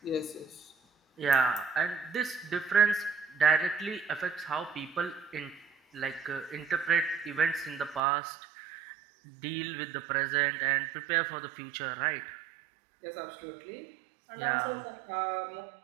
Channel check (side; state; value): left; drops out; at 8.0 s